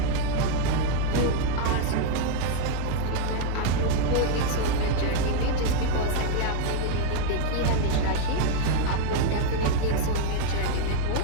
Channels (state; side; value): different; both; correlation 0.01